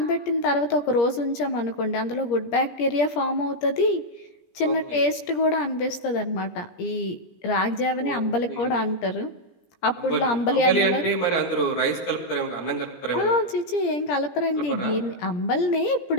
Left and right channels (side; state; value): right; late; 17 ms